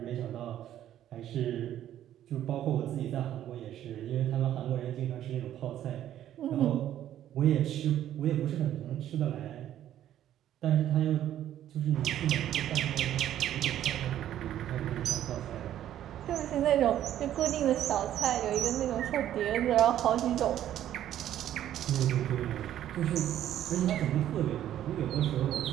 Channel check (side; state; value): left; quieter; 11.7 dB